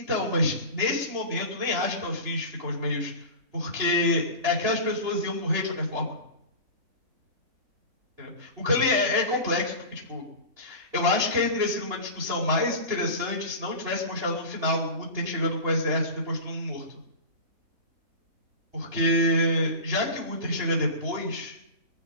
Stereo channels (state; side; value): late; left; 3.0 ms